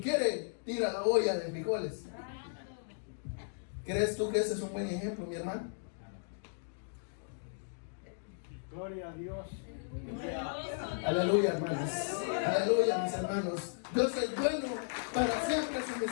tira la olla de frijoles. ¿Crees tú que ese es un buen ejemplo, mi hermano? Gloria a Dios. Aleluya, hermanos. Aleluya, mis hermanos. Dios es bueno, para siempre su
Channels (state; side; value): silent; right; digital silence